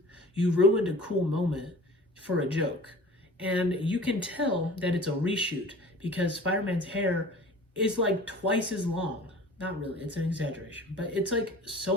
ruined a cool moment for a joke. And you can tell that it's a reshoot because Spider-Man's hair is like twice as long. Not really, it's an exaggeration, but it's like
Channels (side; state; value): both; normal; correlation 0.44